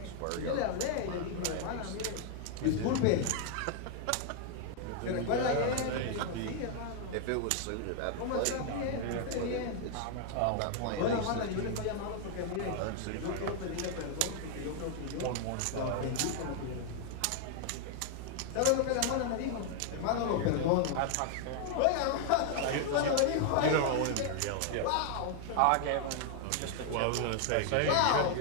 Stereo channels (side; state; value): both; different; correlation 0.00